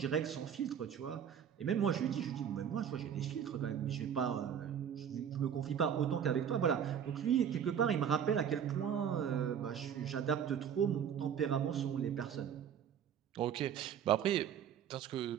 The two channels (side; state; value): left; quieter; 8.5 dB